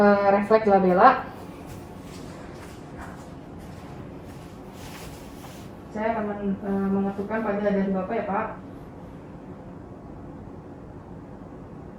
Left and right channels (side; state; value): both; identical; correlation 1.00